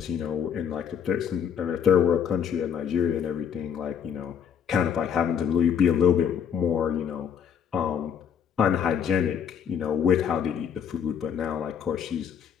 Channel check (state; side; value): quieter; right; 7.9 dB